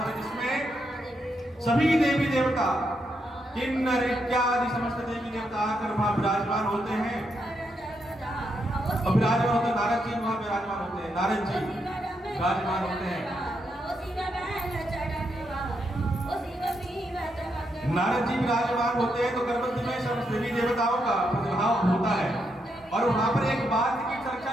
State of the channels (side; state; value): both; normal; correlation 0.80